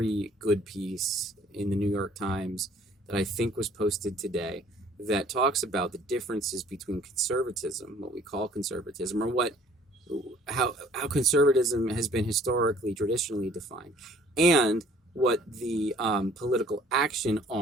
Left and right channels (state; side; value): normal; both; correlation 0.56